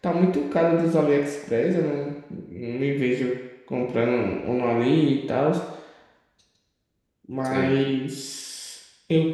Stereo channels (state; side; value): identical; both; correlation 1.00